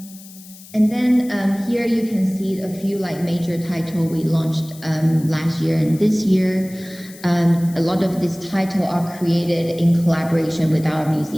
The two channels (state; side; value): noise; left; hiss, 20 dB below the sound